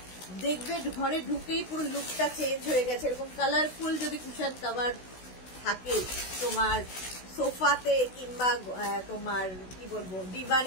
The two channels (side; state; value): right; late; 16 ms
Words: দেখবে ঘরে ঢুকেই পুরো লুকটা চেঞ্জ হয়ে গেছে। এরকম কালারফুল যদি কুশন কাভার থাকে তোমার সোফাতে কিংবা তোমার কি বলবো